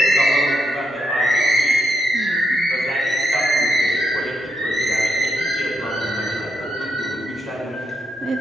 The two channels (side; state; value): both; normal; correlation 0.79